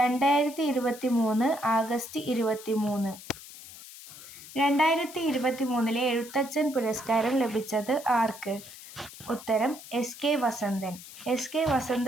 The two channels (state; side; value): noise; left; hiss, 16 dB below the sound